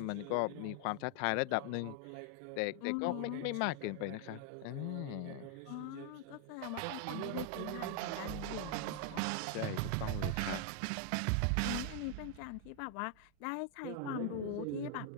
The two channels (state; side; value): different; both; correlation 0.00